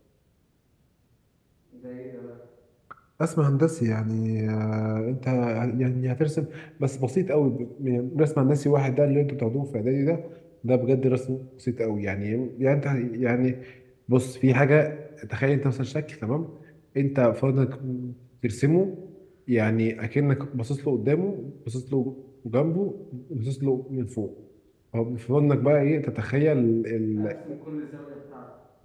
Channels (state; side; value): identical; both; correlation 1.00